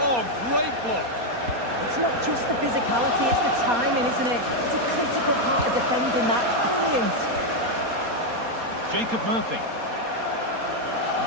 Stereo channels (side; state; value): left; late; 4.2 ms